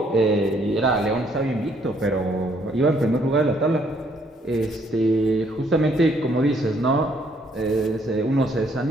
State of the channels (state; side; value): normal; both; correlation 0.67